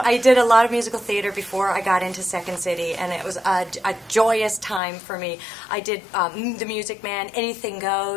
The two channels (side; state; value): right; drops out; at 4.8 s